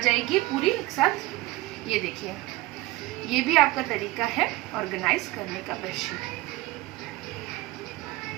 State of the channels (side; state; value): left; quieter; 18.9 dB